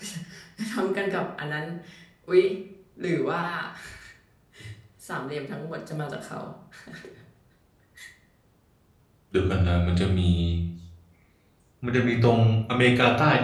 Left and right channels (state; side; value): identical; both; correlation 1.00